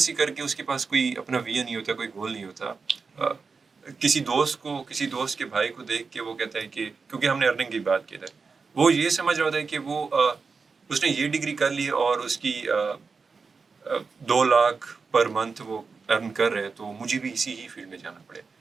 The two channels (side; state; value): left; quieter; 4.8 dB